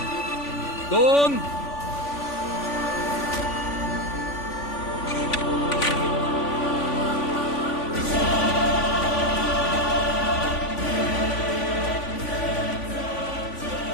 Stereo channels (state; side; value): late; right; 3.5 ms